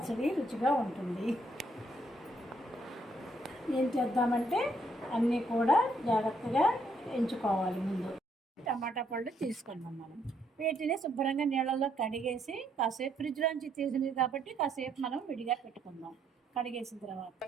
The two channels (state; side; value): normal; both; correlation 0.72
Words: రుచిగా ఉంటుంది. ఏం చేద్దామంటే అన్నీ కూడా జాగ్రత్తగా ఎంచుకోవాలి. ముందు టమాటా పళ్ళు తీసుకున్నాం. మనం వీటిని శుభ్రంగా నీళ్ళల్లో కడిగేసి కాసేపు ఫ్రిడ్జ్లోంచి తీసినవి కాబట్టి కాసేపు మనం విడిగా పెట్టుకుందాం. కడిగేసిన తర్వాత